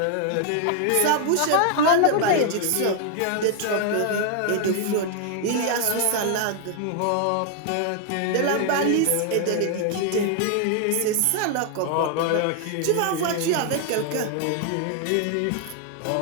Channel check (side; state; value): both; different; correlation 0.00